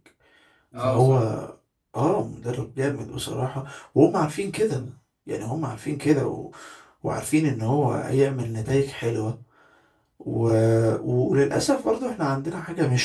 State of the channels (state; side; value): identical; both; correlation 1.00